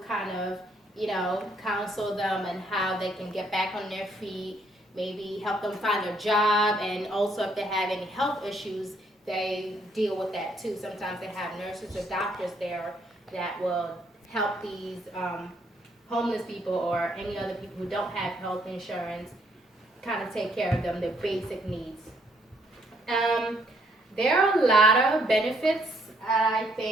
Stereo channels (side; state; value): both; normal; correlation 0.69